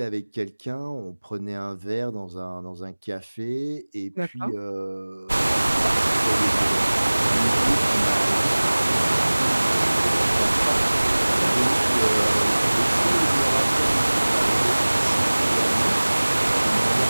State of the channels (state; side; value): inverted; both; correlation -1.00